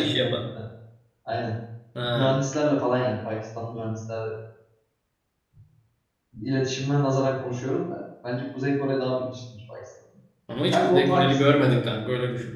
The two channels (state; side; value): identical; both; correlation 1.00